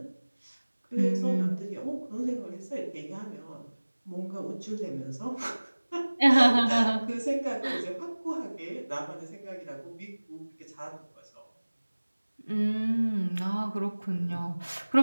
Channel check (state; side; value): inverted; both; correlation -1.00